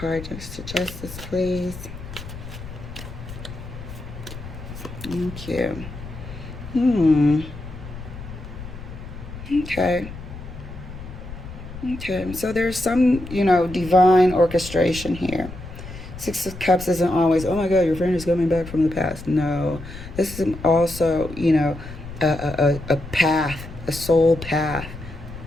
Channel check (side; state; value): left; noise; rumble, 12 dB below the sound